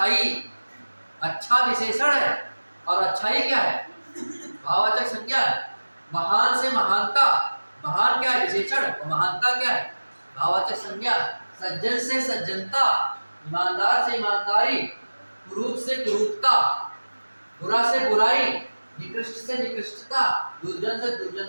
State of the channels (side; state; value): both; inverted; correlation -1.00